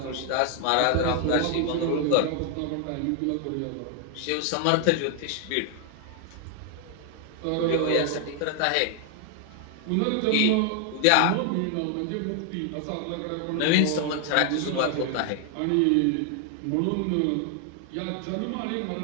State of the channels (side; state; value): both; different; correlation 0.00